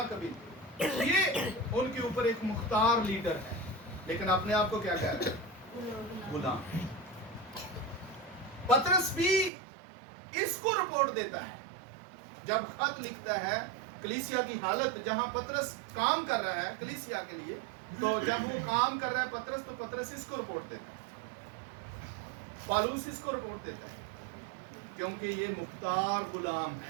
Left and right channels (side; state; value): left; drops out; at 9.5 s